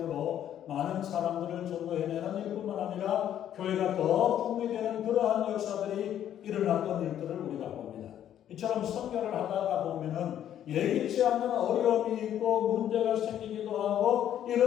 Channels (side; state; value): right; quieter; 10.7 dB